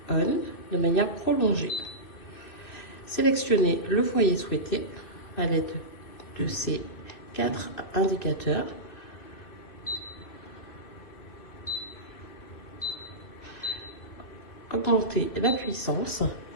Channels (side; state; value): right; late; 2.6 ms